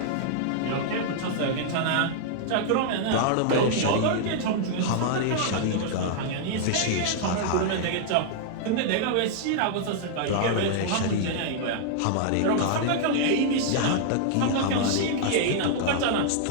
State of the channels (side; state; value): both; different; correlation -0.01